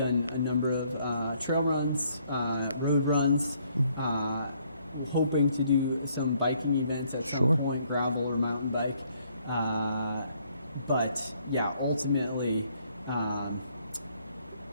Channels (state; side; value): inverted; both; correlation -0.67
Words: a number of trail runs, road runs, hoping to do some biking events at some point, gravel or mountain bike. But yeah, ultimately,